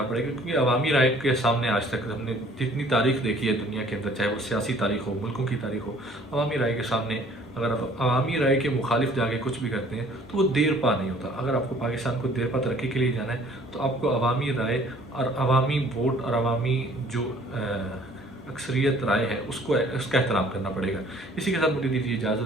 پڑے گا، کیونکہ عوامی رائے کے سامنے آج تک ہم نے جتنی تاریخ دیکھی ہے دنیا کے اندر، چاہے وہ سیاسی تاریخ ہو، ملکوں کی تاریخ ہو، عوامی رائے کے سامنے اگر آپ عوامی رائے کے مخالف جا کے کچھ بھی کرتے ہیں تو وہ دیر پا نہیں ہوتا۔ اگر آپ کو پاکستان کو دیر پا ترقی کے لیے جانا ہے تو آپ کو عوامی رائے اور عوامی ووٹ اور عوامی جو اکثریت رائے ہے اس کا احترام کرنا پڑے گا۔ اسی کے ساتھ مجھے دیجیے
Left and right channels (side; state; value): both; normal; correlation 0.55